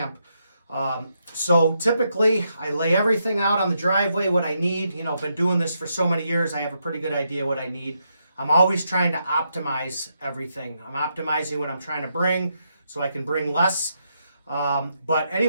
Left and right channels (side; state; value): both; inverted; correlation -0.80